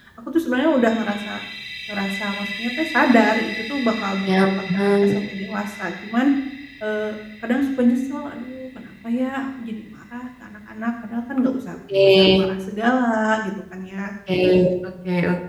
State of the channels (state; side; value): identical; both; correlation 1.00